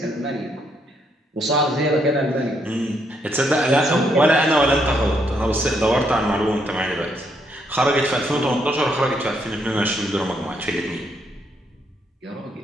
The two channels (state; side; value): normal; both; correlation 0.74